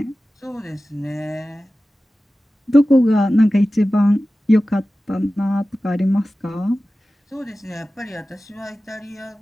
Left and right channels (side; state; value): both; normal; correlation 0.95